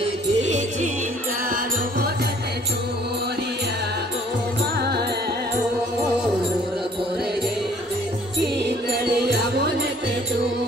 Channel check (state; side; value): normal; both; correlation 0.57